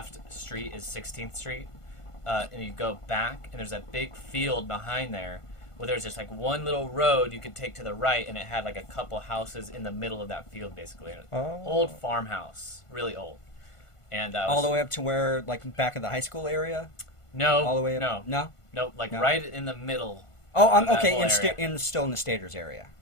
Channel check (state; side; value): late; right; 1.5 ms